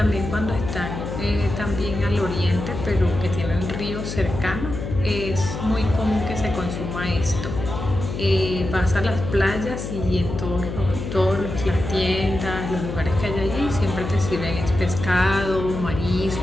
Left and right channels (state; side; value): noise; left; hum, 6 dB below the sound